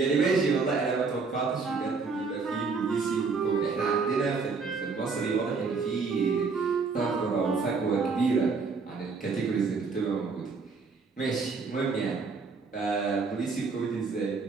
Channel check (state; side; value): quieter; left; 4.6 dB